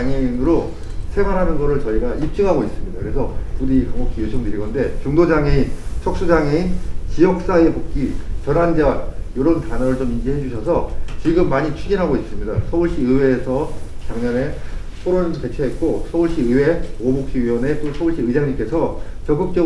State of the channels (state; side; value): identical; both; correlation 1.00